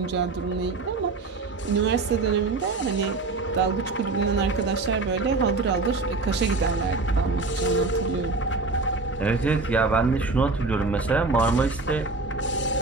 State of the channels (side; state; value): left; quieter; 3.7 dB